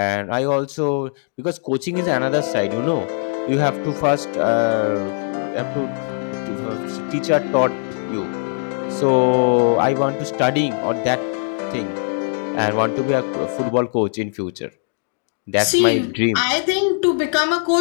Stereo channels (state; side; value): silent; right; 62 dB below the other